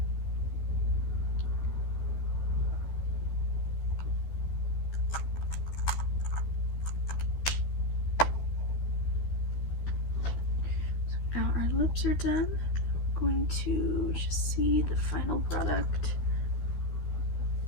Now our lips are done. I'm going to just see the final product.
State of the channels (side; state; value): right; late; 12 ms